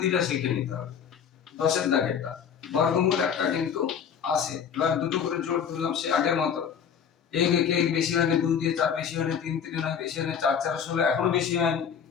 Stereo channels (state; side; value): quieter; right; 7.6 dB